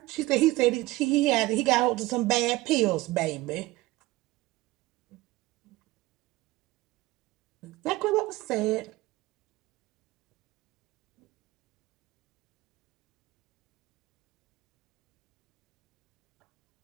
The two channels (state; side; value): quieter; left; 19.4 dB